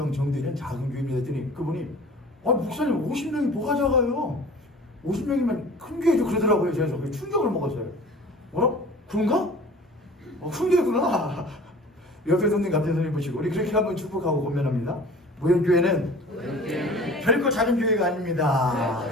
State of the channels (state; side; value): normal; both; correlation 0.44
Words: 정도 되는 작은 교회입니다 했더니 그분이 목사님 50명이 뭐가 작아요? 50명이면 큰 교회죠 그러더라고요. 그래서 충격을 먹었어요. 뭐라? 그런가? 큰 교회구나. 옆에 손님 같은 손님 보시고 우리 그렇게 한번 축복하고 권면합니다. 모형교회는 결코 작은 교회가 아닙니다.